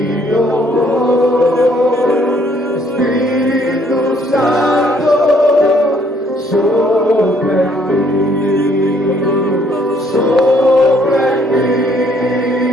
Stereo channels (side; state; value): both; normal; correlation 0.65